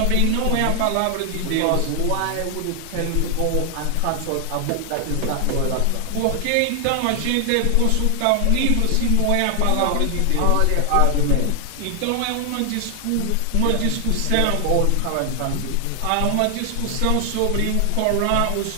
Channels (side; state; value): both; different; correlation 0.00